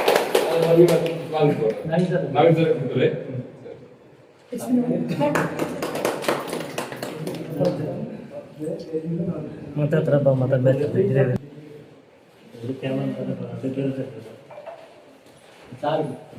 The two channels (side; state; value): both; identical; correlation 1.00